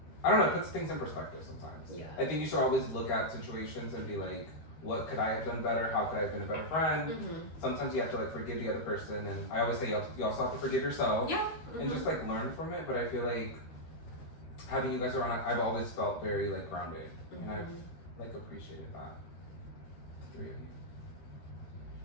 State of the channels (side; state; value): right; late; 13 ms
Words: I don't know, it puts things in perspective sometimes. Yeah. I think you should always look at situations and be like, what could I have done better? How could I have been a better friend? Mm-hmm. Sometimes you have to like forgive the other person, and I always say you also have to forgive yourself. Yeah. And just like learn from it. But I feel like having you guys around, I've always felt very like grounded, and I've like appreciated that. The three of you.